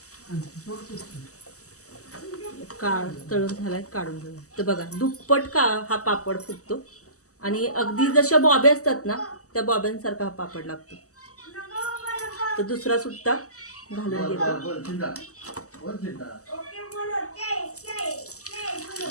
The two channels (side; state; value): right; late; 0.66 ms